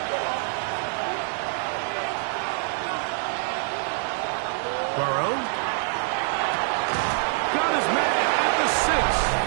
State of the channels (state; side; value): silent; left; 55 dB below the other